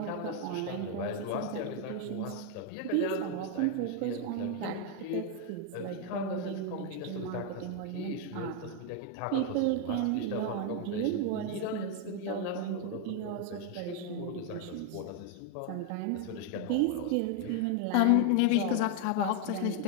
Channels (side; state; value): both; different; correlation 0.01